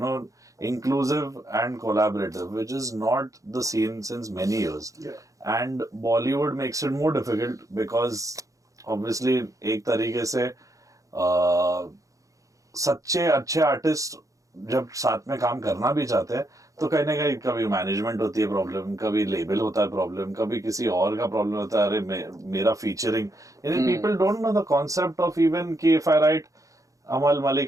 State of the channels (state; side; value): late; left; 0.16 ms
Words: know, inclusive and collaborative, which is not the scene since many years. Yeah. And Bollywood makes it more difficult because obviously एक तरीके से सच्चे अच्छे artist जब साथ में काम करना भी चाहते हैं तो कहीं ना कहीं कभी मैनेजमेंट होती है प्रॉब्लम, कभी लेबल होता है प्रॉब्लम, कभी किसी और का प्रॉब्लम होता है, अरे मेरा फीचरिंग. यानी people don't know the concept of even कि if I write Amaal